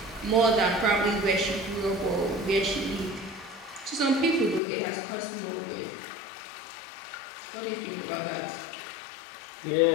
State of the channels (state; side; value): drops out; right; at 4.6 s